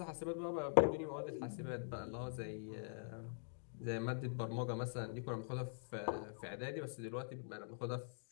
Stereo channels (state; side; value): silent; right; digital silence